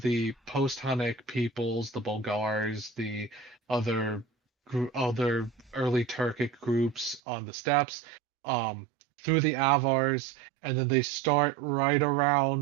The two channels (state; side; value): drops out; left; at 7.2 s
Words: post-Hunnic peoples, the Bulgars, the other other early Turkic groups on the steppes, through the Avars, and then they start right